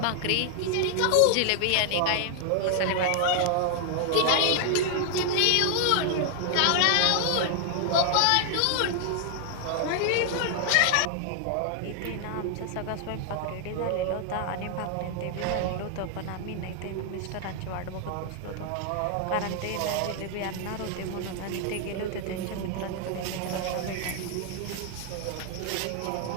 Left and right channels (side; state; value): both; different; correlation 0.00